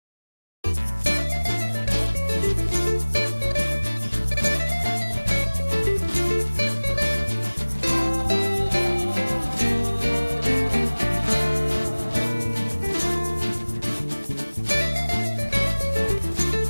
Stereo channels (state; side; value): inverted; both; correlation -1.00